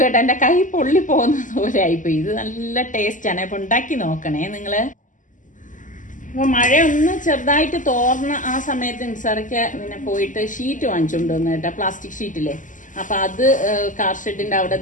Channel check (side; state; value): right; late; 0.37 ms